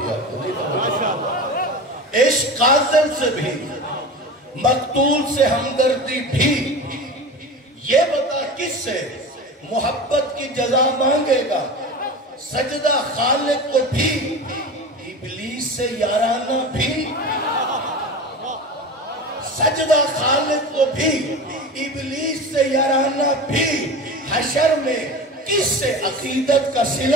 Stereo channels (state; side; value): normal; both; correlation 0.30